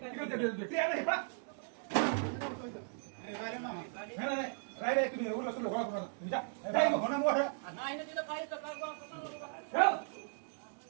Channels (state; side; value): silent; left; digital silence